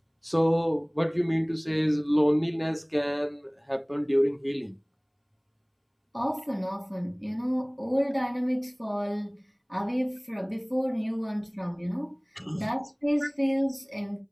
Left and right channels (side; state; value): both; identical; correlation 1.00